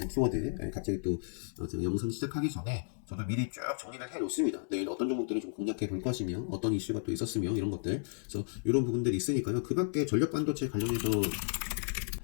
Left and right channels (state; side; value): silent; right; digital silence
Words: 키워드, 갑자기 또 제가 영상 시작하기 전에 저도 미리 쭉 정리를 해 놓습니다. 내일 어떤 종목들을 좀 공략해 볼 것이며, 어떤 이슈가 또 있었으며, 이런 것들. 그래서 이런 부분들이 있으니까요. 그 밖에 전력 반도체 관련해서